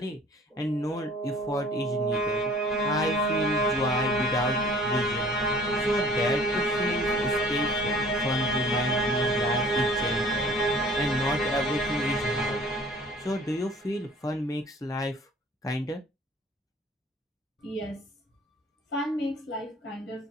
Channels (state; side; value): normal; both; correlation 0.50